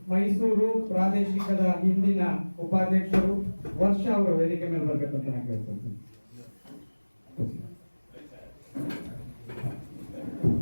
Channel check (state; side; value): inverted; both; correlation -1.00